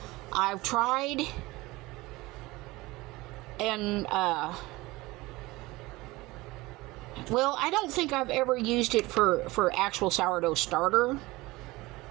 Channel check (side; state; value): left; quieter; 20.7 dB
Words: tried, and well, I don't think I've ever used it for actual sourdough starter.